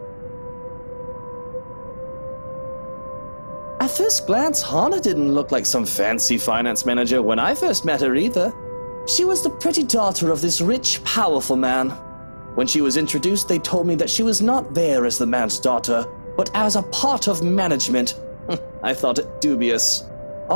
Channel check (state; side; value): inverted; both; correlation -1.00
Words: At first glance, Hana didn't look like some fancy finance manager when I first met her either. She was the pretty daughter of this rich, powerful man. When she was introduced, they told me that she was not there as the man's daughter, but as a part of management. I thought it dubious.